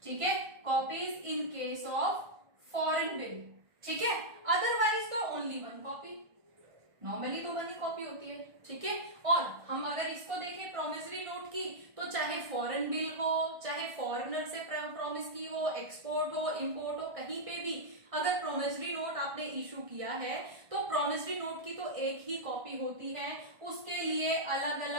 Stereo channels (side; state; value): left; late; 1.6 ms